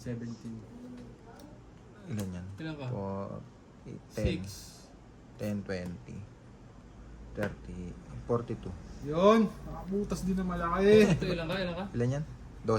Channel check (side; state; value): both; identical; correlation 1.00